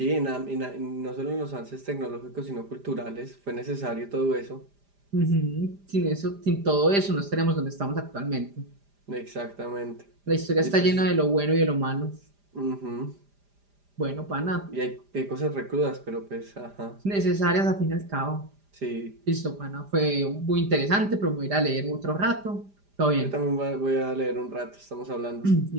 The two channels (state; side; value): late; left; 5.0 ms